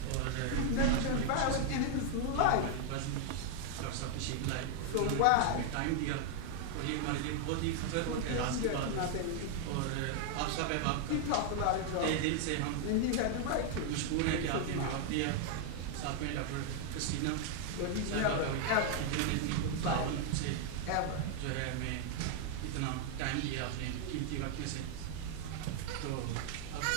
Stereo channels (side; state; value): both; different; correlation 0.00